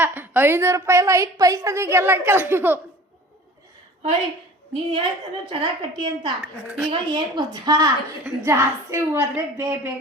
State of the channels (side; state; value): both; normal; correlation 0.43